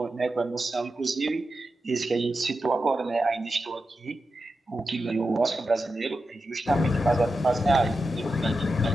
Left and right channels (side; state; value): both; normal; correlation 0.90